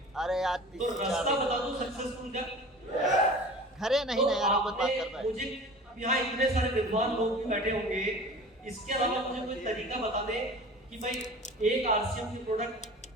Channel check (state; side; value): normal; both; correlation 0.40